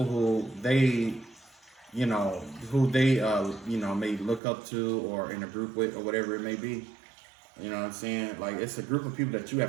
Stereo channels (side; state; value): left; drops out; at 4.4 s